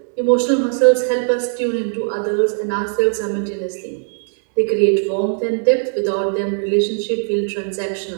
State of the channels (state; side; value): silent; left; digital silence